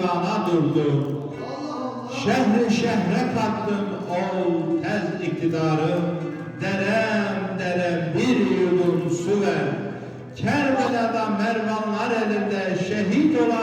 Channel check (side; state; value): both; identical; correlation 1.00